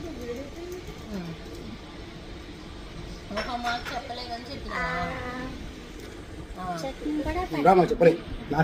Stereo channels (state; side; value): identical; both; correlation 1.00